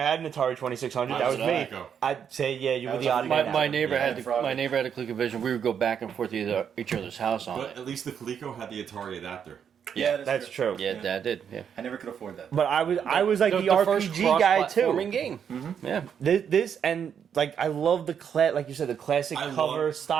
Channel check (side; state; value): left; quieter; 7.9 dB